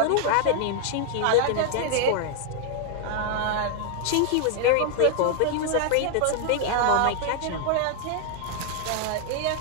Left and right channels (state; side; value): different; both; correlation 0.00